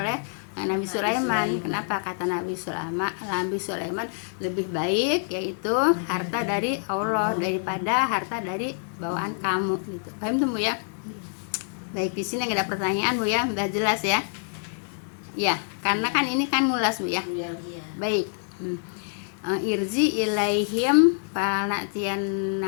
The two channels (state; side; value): silent; right; 61 dB below the other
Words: oleh Nabi Sulaiman. Kenapa? Kata Nabi Sulaiman lebih baik yaitu harta dari Allah daripada harta dari bawaan kamu gitu. Paham tuh Bu ya? Baik, di sini nggak ada pertanyaan Bu ya, udah jelas ya. Ya, karena kan ini kan mulas Bu ya. Baik. Irji ilaihim